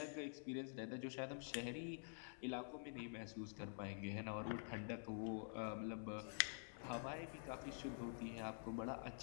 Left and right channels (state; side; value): silent; right; digital silence